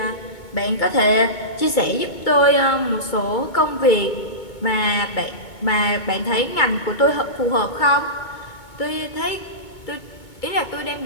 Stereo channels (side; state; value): right; late; 2.2 ms